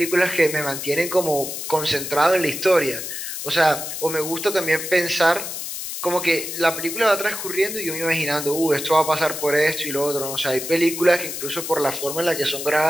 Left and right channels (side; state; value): left; noise; hiss, 6 dB below the sound